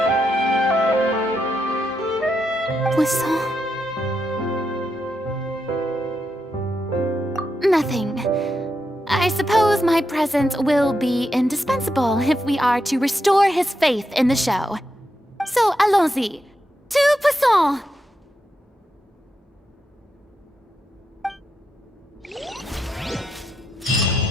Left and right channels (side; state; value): both; normal; correlation 0.84